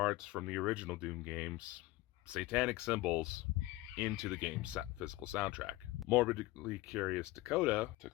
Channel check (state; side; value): quieter; right; 18.6 dB